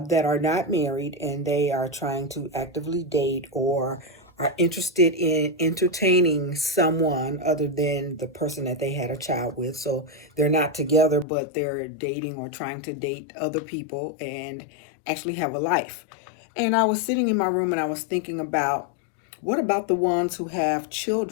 are not married and they are trying to actively date or are interested in entertaining someone other than the person that they had a child with. So they're not together, but they're dating or trying to date other people and actually have a life. And I was sitting in my room and I was thinking about what about the ones who have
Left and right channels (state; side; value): drops out; right; at 11.2 s